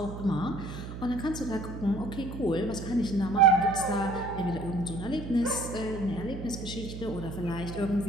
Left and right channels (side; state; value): right; noise; hum, 9 dB below the sound